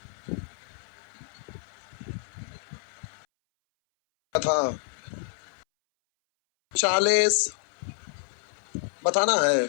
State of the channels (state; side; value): silent; right; 59 dB below the other